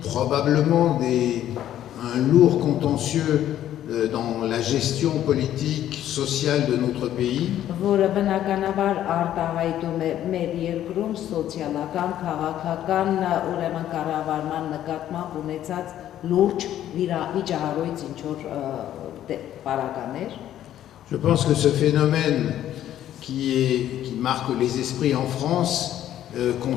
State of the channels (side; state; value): right; quieter; 11.8 dB